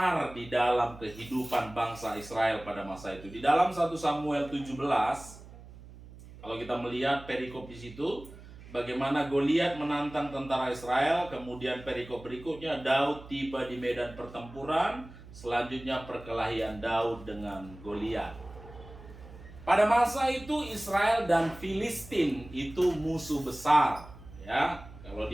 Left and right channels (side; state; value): right; noise; hum, 18 dB below the sound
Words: di dalam kehidupan bangsa Israel pada masa itu. Di dalam 1 Samuel 17, kalau kita melihat perikop di situ, bagaimana Goliat menantang tentara Israel, kemudian perikop berikutnya Daud tiba di medan pertempuran, selanjutnya perkelahian Daud dengan Goliat. Pada masa itu Israel dan Filistin itu musuh besar, ya. Kalau